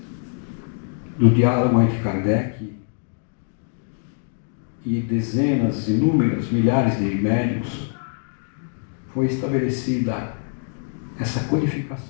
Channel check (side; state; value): right; silent; 60 dB below the other